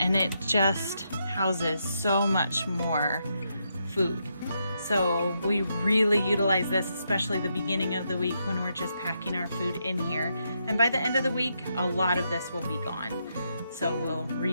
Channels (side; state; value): both; inverted; correlation -0.81